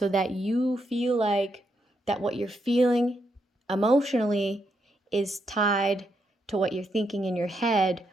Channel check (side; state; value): both; normal; correlation 0.80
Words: that you feel like that what you're feeling emotionally is tied to what you're thinking in your head,